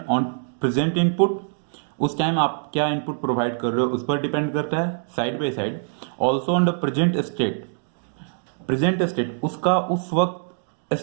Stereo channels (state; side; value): silent; left; digital silence